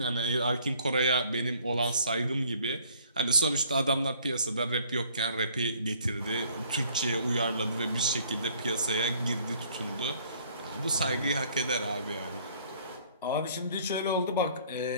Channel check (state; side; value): inverted; both; correlation -0.59